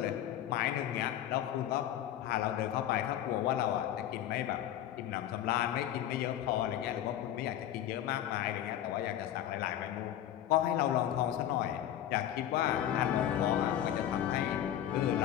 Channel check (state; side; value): quieter; right; 11.5 dB